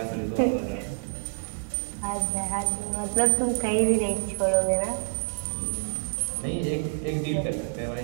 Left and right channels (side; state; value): left; silent; digital silence